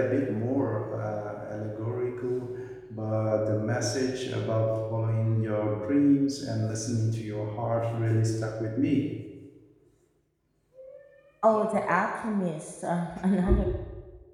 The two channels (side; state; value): both; identical; correlation 1.00